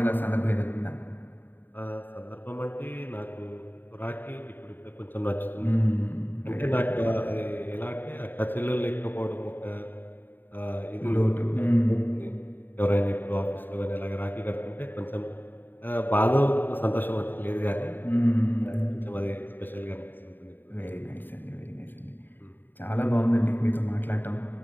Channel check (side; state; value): right; late; 0.092 ms